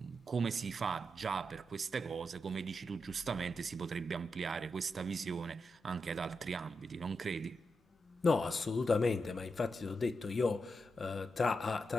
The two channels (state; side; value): normal; both; correlation 0.86